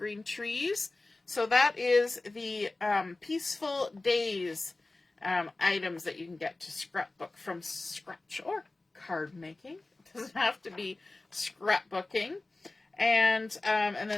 trees. So that is the Peaceful Days items that you can get to scrapbook from scratch or card making. It doesn't have to be scrapbooking. And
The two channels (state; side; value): quieter; right; 3.1 dB